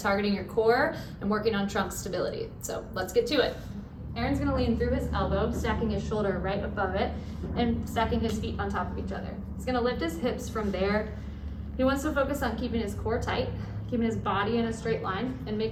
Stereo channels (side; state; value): both; identical; correlation 1.00